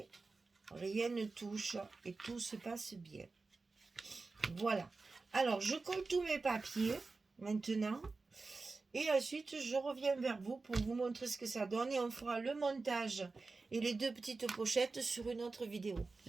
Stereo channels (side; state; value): left; quieter; 3.9 dB